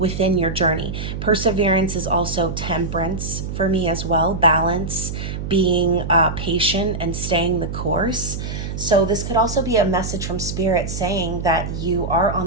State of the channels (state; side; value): noise; right; hum, 5 dB below the sound